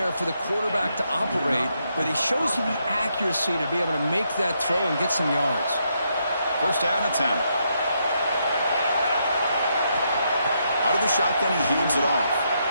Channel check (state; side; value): inverted; both; correlation -0.78